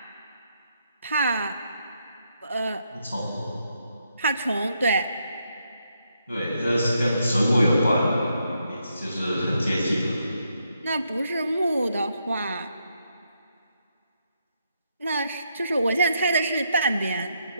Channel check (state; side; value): inverted; both; correlation -0.79